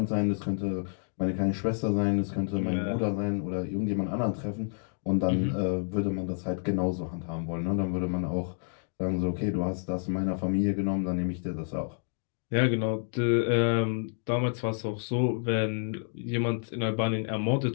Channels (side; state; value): right; silent; 58 dB below the other